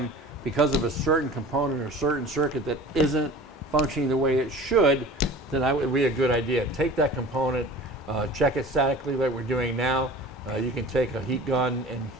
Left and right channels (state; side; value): normal; both; correlation 0.41